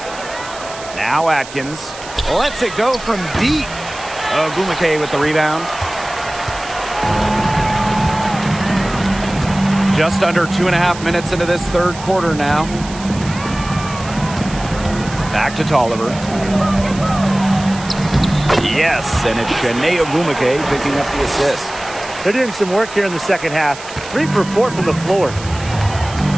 Now Atkins lets it go from deep. Ogumake with the rebound. Just under 2.5 minutes into this third quarter now. Back to Tolliver. Yes, and it's Shanae Ogumake picking up the assist. They're doing some work here in the second half. 3 for 4 from the floor.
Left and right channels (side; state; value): right; noise; hiss, 14 dB below the sound